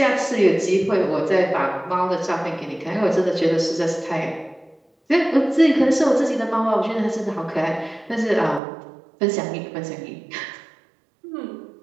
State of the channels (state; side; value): drops out; left; at 8.6 s